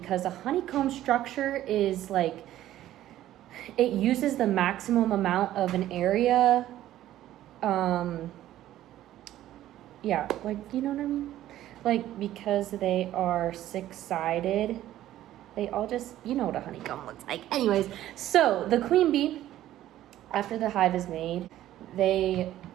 a honeycomb structure is like, it uses the maximum amount of an area. Yeah, like, you know what I mean? Like, because they are six-sided, they all just, you know what a honeycomb looks like. Anyways, so the queen bee, after the hive is made, they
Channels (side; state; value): left; quieter; 13.4 dB